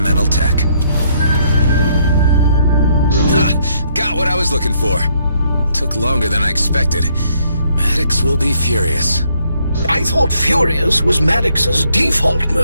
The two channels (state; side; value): inverted; both; correlation -0.70